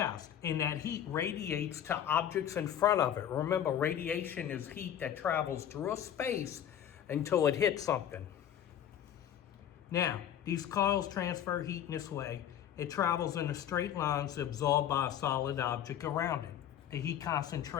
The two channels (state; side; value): quieter; right; 10.1 dB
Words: And that heat radiates to objects in front of it. Remember, radiation is heat that travels through a space until it hits something. Now, these coils transfer heat in this way. It travels in a straight line absorbed by a solid object around it. The heat